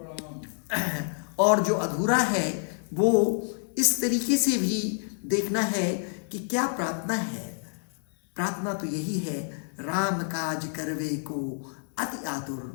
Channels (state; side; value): silent; right; 57 dB below the other